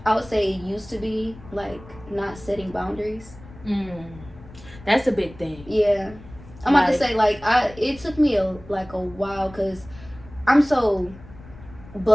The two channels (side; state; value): left; noise; rumble, 19 dB below the sound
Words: I would say it used to be like not setting boundaries. That's a big thing. Yeah, I'm about to say like it took me a while because I'm so